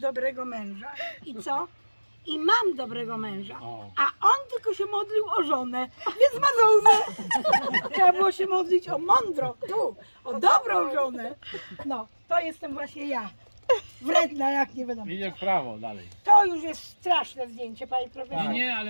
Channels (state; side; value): inverted; both; correlation -1.00